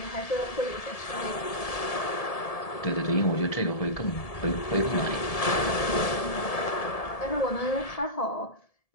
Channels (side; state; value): right; late; 1.7 ms